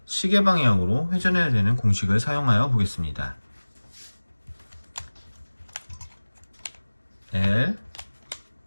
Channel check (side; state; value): both; inverted; correlation -1.00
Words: 시계 방향으로 회전해야 되는 공식을 사용하여 보겠습니다. L